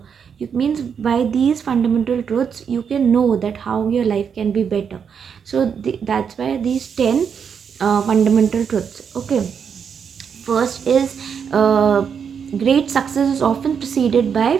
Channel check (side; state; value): left; quieter; 7.0 dB